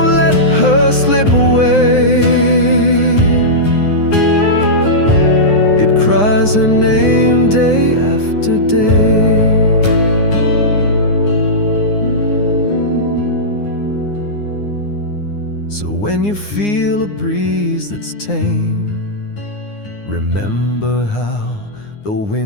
let her slip away. It cries her name day after day. So when you feel a breeze that's tame, remember how the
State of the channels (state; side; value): late; right; 9.7 ms